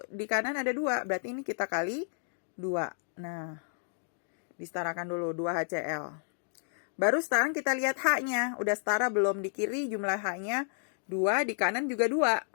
di kanan ada 2. Berarti ini kita kali 2. Nah, disetarakan dulu 2HCl. Baru sekarang kita lihat H-nya. Udah setara belum? Di kiri jumlah H-nya 2, di kanan juga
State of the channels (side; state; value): right; silent; 57 dB below the other